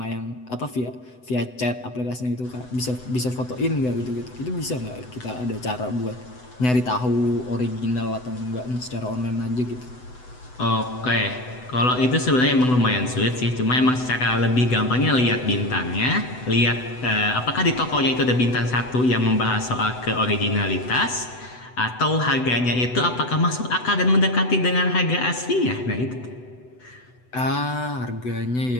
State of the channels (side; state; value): right; late; 8.0 ms